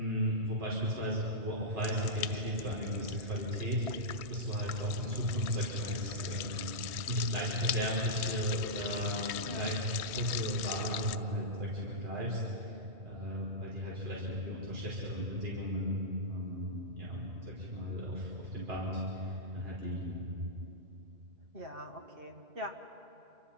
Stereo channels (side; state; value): left; late; 1.6 ms